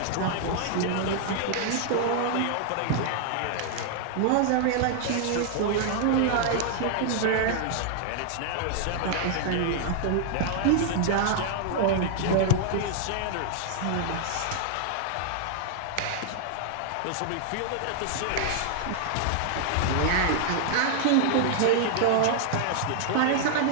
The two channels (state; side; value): different; both; correlation -0.01